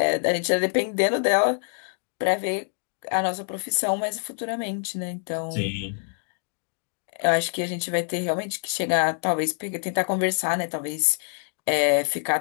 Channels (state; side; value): silent; right; 60 dB below the other